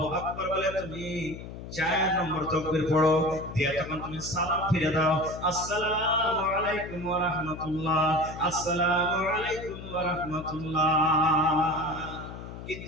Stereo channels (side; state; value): left; noise; hum, 11 dB below the sound